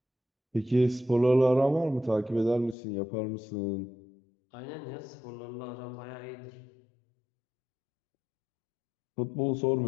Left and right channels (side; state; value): right; drops out; at 2.8 s